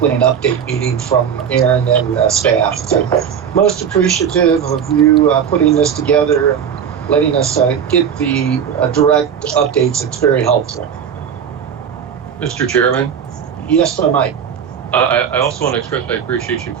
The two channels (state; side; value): quieter; left; 7.9 dB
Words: an update meeting from Aaron and staff. So most appreciative of you putting this together and letting us get the direct updates. It's very helpful. Mr. Chairman? Yes, sir, Mike. I also want to express my appreciation